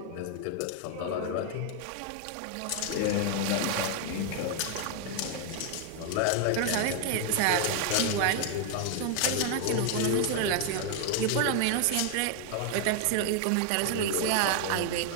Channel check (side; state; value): both; different; correlation 0.00